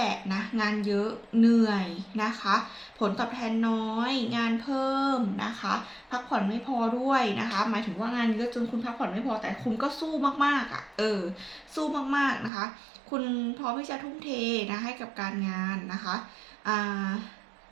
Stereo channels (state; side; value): drops out; left; at 12.5 s